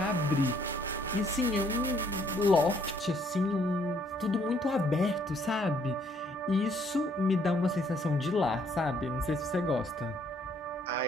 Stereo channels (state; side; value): normal; both; correlation 0.66